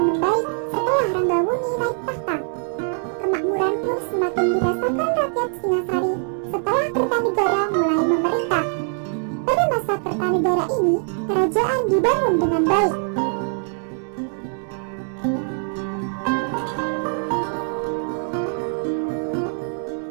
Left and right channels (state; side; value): silent; left; 60 dB below the other